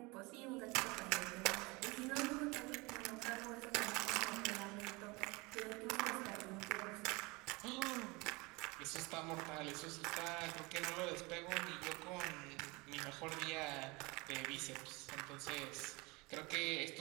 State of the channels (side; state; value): left; quieter; 25.3 dB